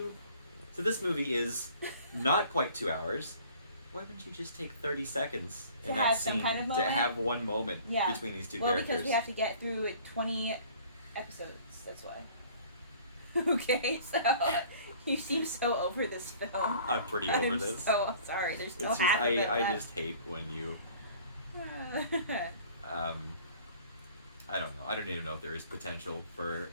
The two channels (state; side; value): inverted; both; correlation -0.50